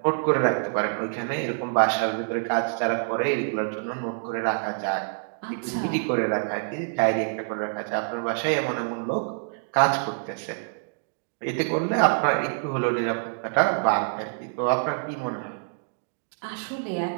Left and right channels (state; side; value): silent; left; digital silence